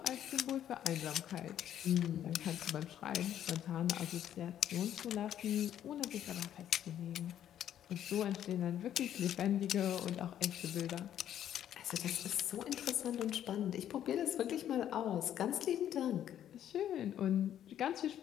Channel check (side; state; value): right; quieter; 10.7 dB